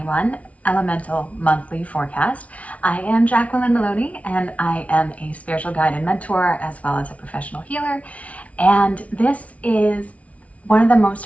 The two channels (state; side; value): late; right; 0.066 ms